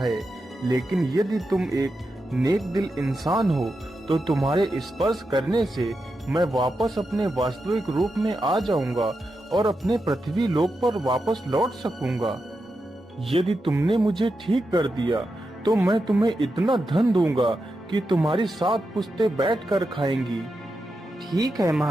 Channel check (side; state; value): both; normal; correlation 0.88